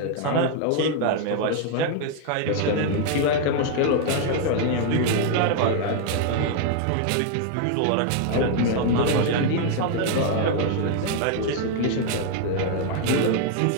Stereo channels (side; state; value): both; different; correlation 0.00